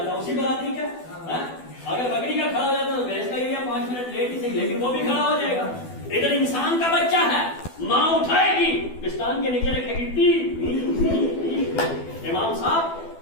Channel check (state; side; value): late; right; 12 ms